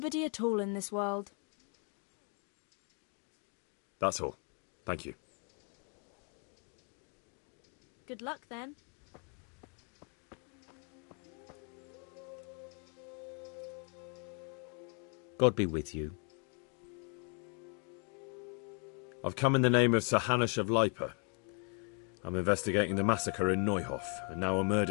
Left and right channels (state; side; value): quieter; right; 38.1 dB